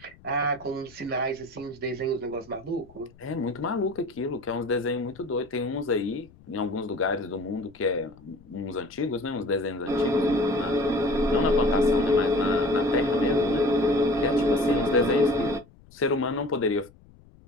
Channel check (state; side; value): noise; left; rumble, 26 dB below the sound